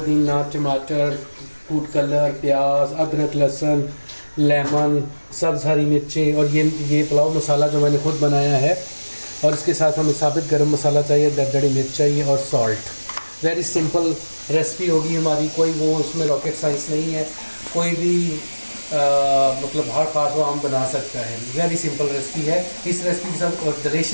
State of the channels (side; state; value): both; inverted; correlation -1.00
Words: टमाटर, फूड कलर, प्याज, अदरक, लहसुन, लेमन, सब्ज़ हरी मिर्चें और ये पुलाव मसाला जो मैंने खुद बनाया है। और इसके साथ हमें साबित गरम मसाला चाहिए, दरदरी मिर्च चाहिए और सॉल्ट। वेरी सिंपल रेसिपी होगी हमारी, कोई वो उसमें रॉकेट साइंस नहीं है। कोई भी मतलब हर खास वो हम बना सकता है। वेरी सिंपल रेसिपी है। इस रेसिपी के साथ और